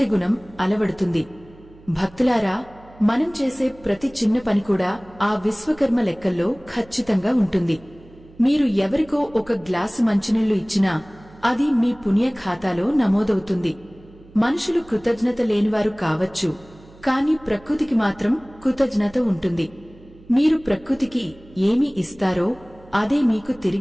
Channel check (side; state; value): right; noise; hum, 24 dB below the sound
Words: గుణం అలవడుతుంది. భక్తులారా, మనం చేసే ప్రతి చిన్న పని కూడా ఆ విశ్వకర్మ లెక్కల్లో ఖచ్చితంగా ఉంటుంది. మీరు ఎవరికో ఒక గ్లాసు మంచినీళ్లు ఇచ్చినా అది మీ పుణ్య ఖాతాలో నమోదవుతుంది. మనుషులు కృతజ్ఞత లేనివారు కావచ్చు, కాని ప్రకృతికి మాత్రం కృతజ్ఞత ఉంటుంది. మీరు ప్రకృతికి ఏమి ఇస్తారో అదే మీకు